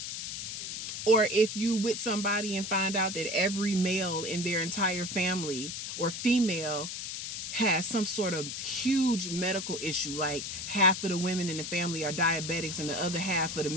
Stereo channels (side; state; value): left; noise; hiss, 5 dB below the sound